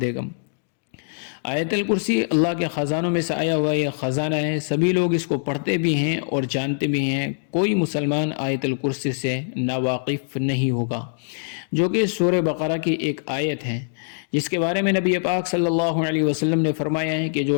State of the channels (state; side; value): silent; right; digital silence